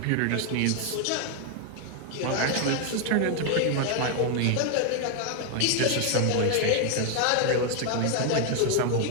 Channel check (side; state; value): both; different; correlation 0.01